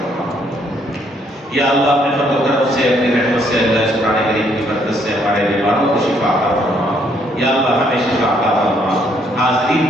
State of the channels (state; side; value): normal; both; correlation 0.69